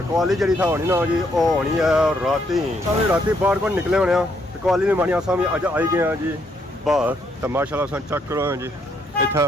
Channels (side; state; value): both; normal; correlation 0.73